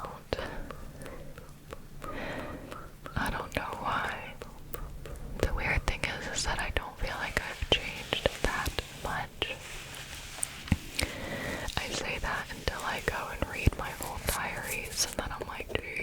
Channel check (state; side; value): identical; both; correlation 1.00